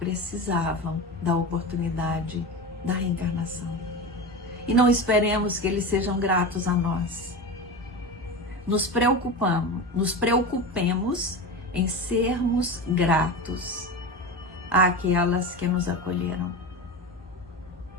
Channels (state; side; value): normal; both; correlation 0.25